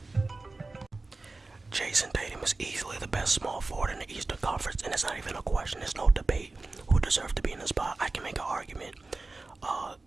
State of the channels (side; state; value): left; quieter; 3.4 dB